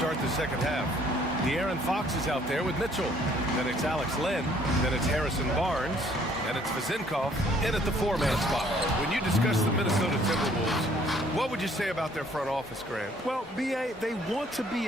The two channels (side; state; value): both; normal; correlation 0.61